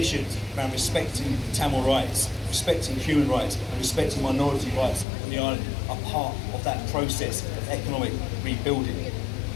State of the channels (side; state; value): right; drops out; at 5.1 s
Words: around respecting Tamil rights, respecting human rights and respecting minority rights on the island are part of that process of economic rebuilding.